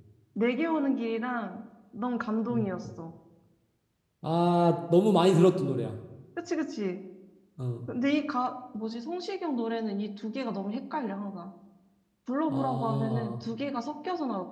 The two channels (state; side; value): identical; both; correlation 1.00